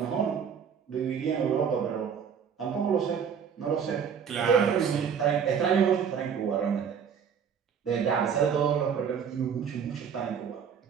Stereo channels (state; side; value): quieter; left; 7.3 dB